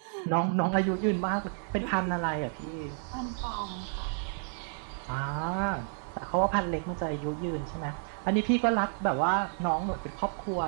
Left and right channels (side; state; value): left; silent; 57 dB below the other